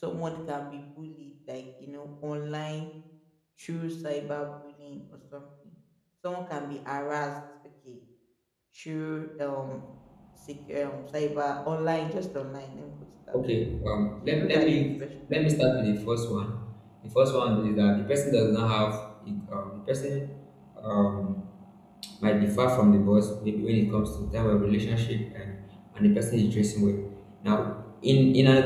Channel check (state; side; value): identical; both; correlation 1.00